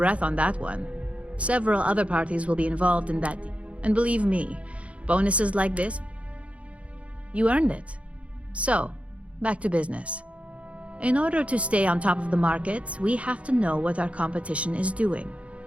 on that one. Several other parties will be involved in that deal. And believe me, bonuses like this, you earned it. So, back to business. In order to stay on top of the market, we have to know what our competition is doing.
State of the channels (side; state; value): left; late; 0.063 ms